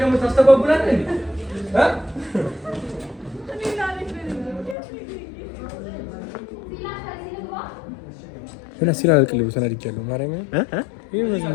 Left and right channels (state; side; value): drops out; right; at 4.8 s